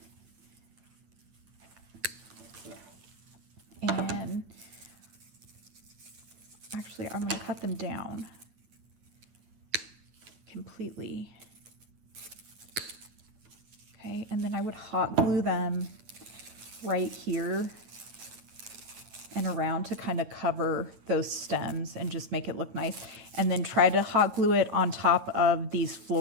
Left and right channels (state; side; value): late; left; 9.1 ms